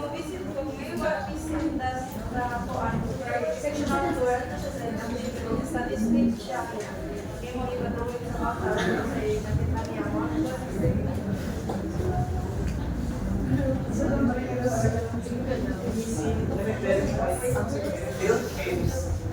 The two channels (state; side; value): identical; both; correlation 1.00